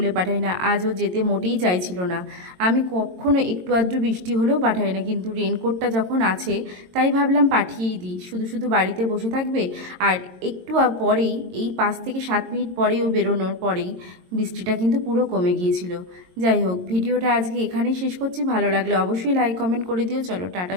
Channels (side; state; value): left; late; 22 ms